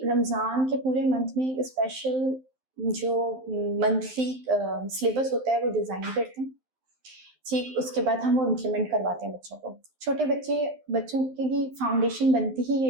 रमजान के पूरे मंथ में एक स्पेशल जो मंथली सिलेबस होता है वो डिजाइन करते हैं। ठीक, उसके बाद हम वो इम्प्लीमेंट करवाते हैं बच्चों को। छोटे बच्चों की फाउंडेशन बनती ही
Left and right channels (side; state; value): left; late; 12 ms